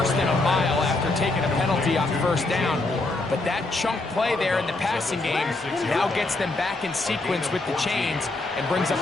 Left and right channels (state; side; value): quieter; right; 3.0 dB